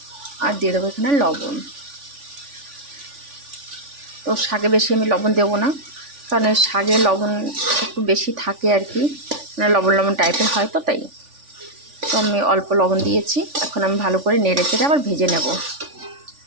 আর দিয়ে দেবো এখানে লবণ। তো শাকে বেশি আমি লবণ দেবো না, কারণ এই শাকে লবণ একটু বেশি থাকে আর কি, মানে লবণ লবণ টাইপের হয়, তো তাই। তো আমি অল্প লবণ দিয়েছি। এখন আমি ভালো করে নেড়ে চেড়ে আবার ভেজে নেব।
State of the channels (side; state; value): left; late; 3.5 ms